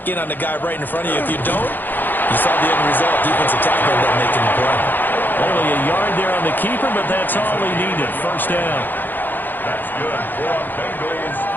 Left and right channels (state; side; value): late; right; 0.090 ms